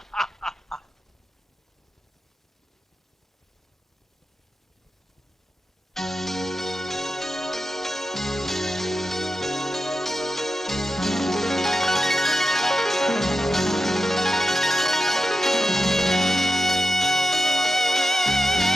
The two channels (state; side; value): normal; both; correlation 0.90